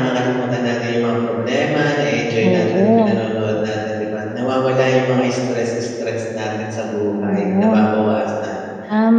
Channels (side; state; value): both; identical; correlation 1.00